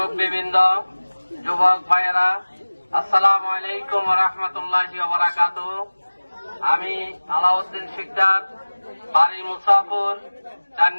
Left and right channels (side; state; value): both; inverted; correlation -1.00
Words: যুবক ভাইয়েরা, আসসালামু আলাইকুম ওয়া রাহমাতুল্লাহি ওয়া বারাকাতুহু। আমি আলাউদ্দিন শিকদার, বাড়ি মুসাফর, 4